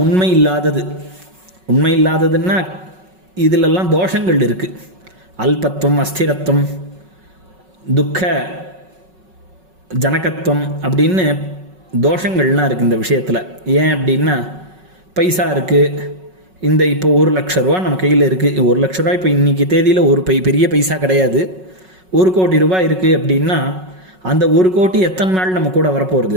உண்மை இல்லாதது. உண்மை இல்லாததுன்னா இதிலெல்லாம் தோஷங்கள் இருக்குது. அல்பத்துவம், அஸ்திரத்துவம், துக்க ஜனகத்துவம் அப்படின்னு தோஷங்கள்லாம் இருக்குது இந்த விஷயத்தில். ஏன் அப்படின்னா பைசா இருக்குது, இந்த இப்போ 1,00,000 ரூபா நம்ம கையில் இருக்குது. 1,00,000 ரூபா இப்போ இன்றைக்கி தேதியில் ஒரு பெரிய பைசா கிடையாது. 1 கோடி ரூபாய் இருக்குது அப்படின்னா அந்த 1 கோடி எத்தனை நாள் நம்ம கூட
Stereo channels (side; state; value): left; late; 5.4 ms